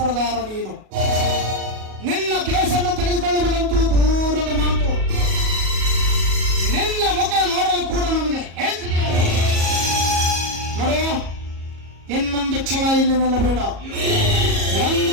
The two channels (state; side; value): late; left; 37 ms